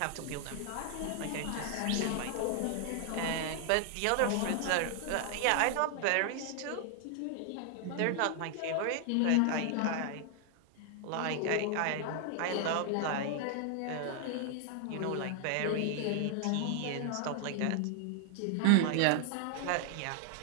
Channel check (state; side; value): different; both; correlation 0.00